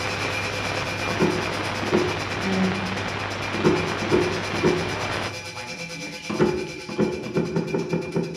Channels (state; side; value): identical; both; correlation 1.00